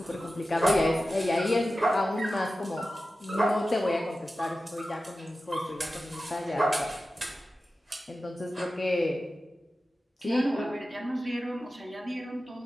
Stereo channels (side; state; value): both; normal; correlation 0.94